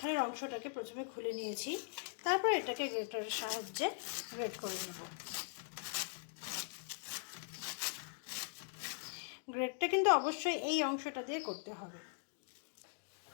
অংশটাকে প্রথমে খুলে নিয়েছি, তারপর এটাকে গ্রেটারের সাহায্যে গ্রেট করে নেব। গ্রেটটা কিন্তু অবশ্যই এই অংশটা দিয়ে করতে হবে।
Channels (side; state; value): right; silent; digital silence